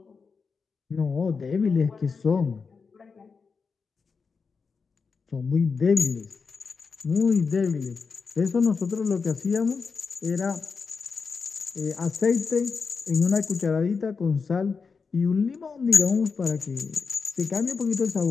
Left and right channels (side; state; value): right; quieter; 5.1 dB